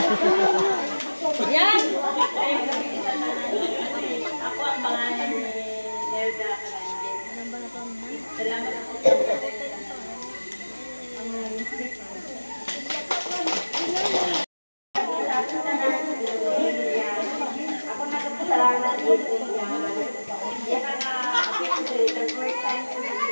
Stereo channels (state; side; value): inverted; both; correlation -1.00